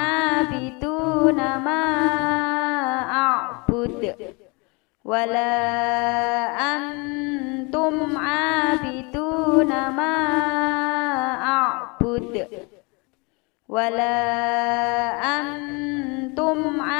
ma a'bud. Wala antum 'abiduna ma a'bud. Wala antum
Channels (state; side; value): quieter; right; 29.1 dB